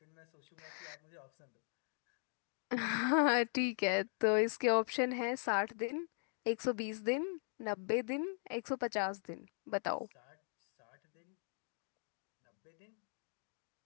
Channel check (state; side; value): silent; right; 51 dB below the other